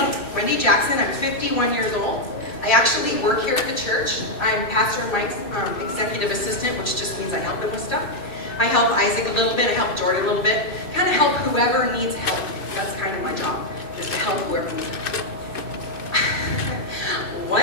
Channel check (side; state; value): right; late; 2.5 ms